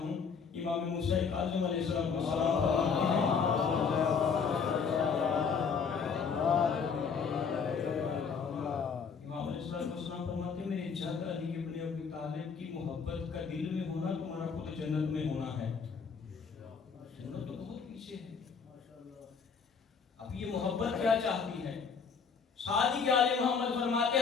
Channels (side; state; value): right; quieter; 5.9 dB